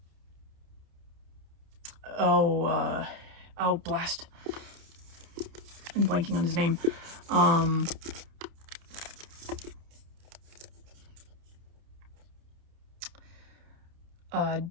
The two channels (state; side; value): late; left; 29 ms